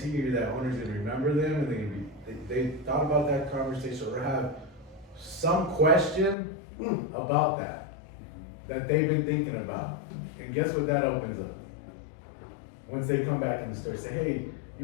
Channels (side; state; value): right; drops out; at 6.4 s